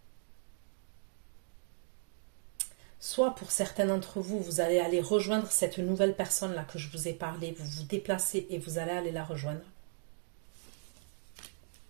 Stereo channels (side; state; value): left; silent; 53 dB below the other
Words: Soit pour certains d'entre vous, vous allez aller rejoindre cette nouvelle personne-là que je vous ai parlé. Vous vous déplacez et vous allez aller la rejoindre.